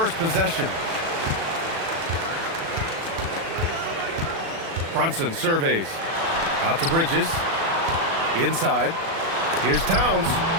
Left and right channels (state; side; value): late; left; 36 ms